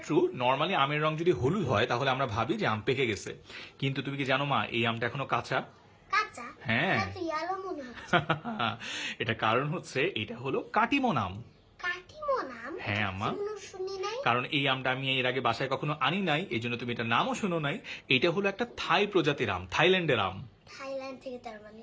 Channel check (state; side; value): identical; both; correlation 1.00